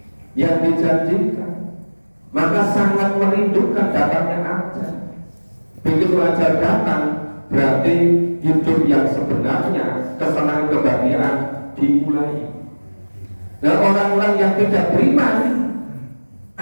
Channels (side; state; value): both; inverted; correlation -1.00